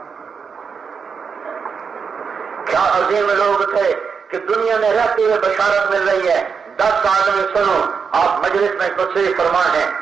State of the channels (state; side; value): quieter; left; 5.9 dB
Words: کیا عظیم لوگ تھے کہ دنیا میں رہتے ہوئے بشارت مل رہی ہے. 10 آدمی سنو, آپ مجلس میں تشریف فرما ہے,